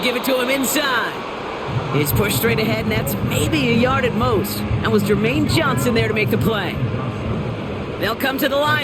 give it to him inside. He's pushed straight ahead, and that's maybe a yard at most. That was Jermaine Johnson there to make the play. They'll come to the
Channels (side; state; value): both; identical; correlation 1.00